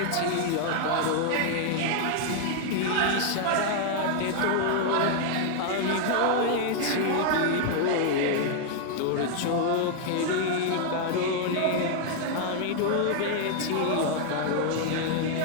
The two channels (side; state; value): both; different; correlation 0.00